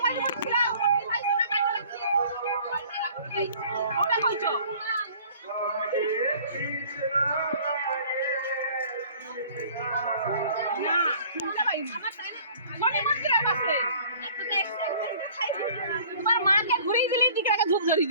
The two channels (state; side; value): inverted; both; correlation -0.51